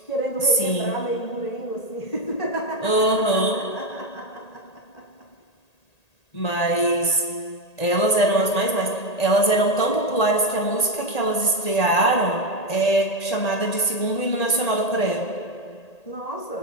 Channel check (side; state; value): right; late; 1.8 ms